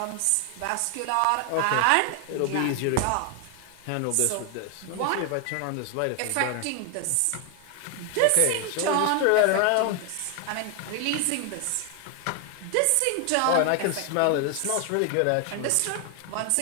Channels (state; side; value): different; both; correlation 0.00